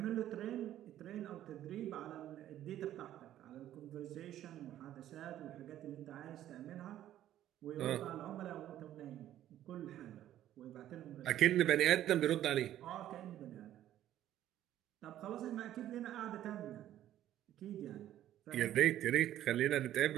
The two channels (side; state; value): left; quieter; 12.3 dB